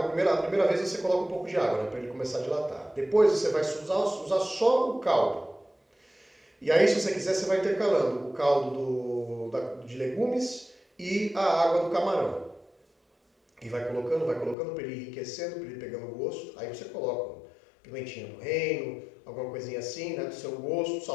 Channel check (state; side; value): drops out; right; at 14.6 s